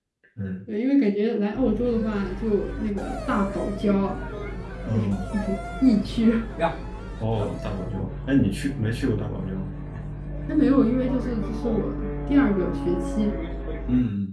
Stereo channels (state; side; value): identical; both; correlation 1.00